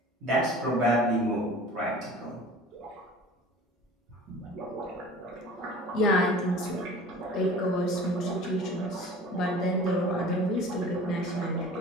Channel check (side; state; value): both; normal; correlation 0.43